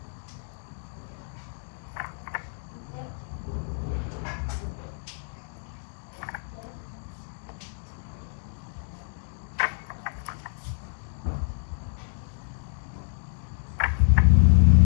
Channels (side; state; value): right; silent; digital silence